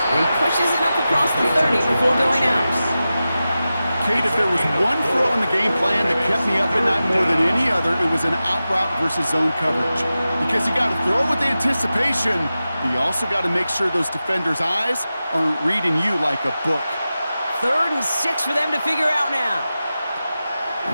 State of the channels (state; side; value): inverted; both; correlation -0.94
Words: he pushes it up across the 30 before going out. Kate, if there was one throw in the game plan that kept me up at night more than any other, it was an out route versus zone coverage. Because you got to throw with anticipation, but you also got to make sure those defenders' eyes aren't reading you like a book. 3rd and 6 for them to figure out now.